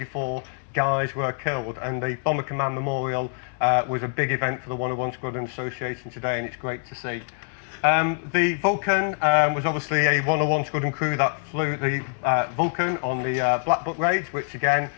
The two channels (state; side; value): silent; right; digital silence